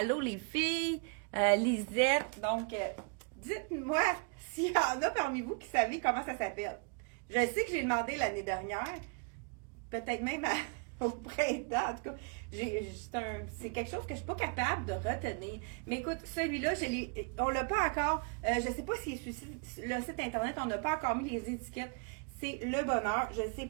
les filles. Lisette. Donc, dites-moi s'il y en a parmi vous qui savez comment ça s'appelle. Je sais que j'ai demandé l'année dernière. Peut-être même au printemps, en tout cas. C'est quelque chose que je ne suis pas capable de retenir. Mais écoute, celui-là, on l'a pas encore. Je ne sais pas si sur le site internet, on n'a pas encore mis les étiquettes. C'est le bonheur. Je ne sais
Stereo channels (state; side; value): quieter; left; 36.8 dB